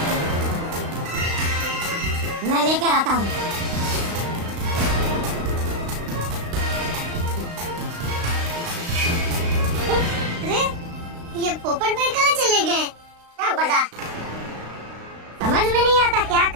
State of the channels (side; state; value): left; late; 35 ms